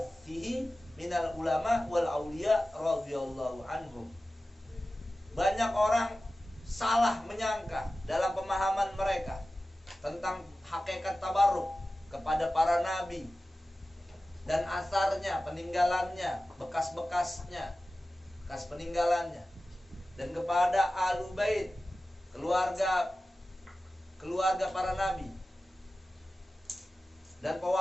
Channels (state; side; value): normal; both; correlation 0.95